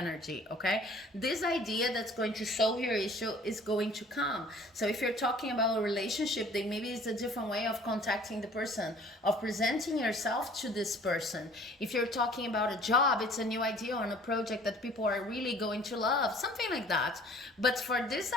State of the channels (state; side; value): normal; both; correlation 0.52